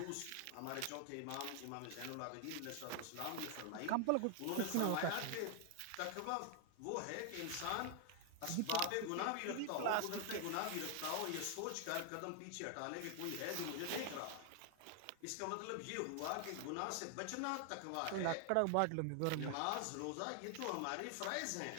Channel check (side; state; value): both; different; correlation 0.00